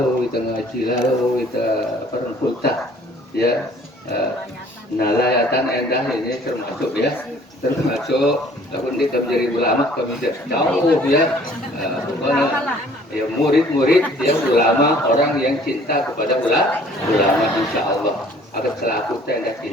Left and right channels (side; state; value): both; normal; correlation 0.55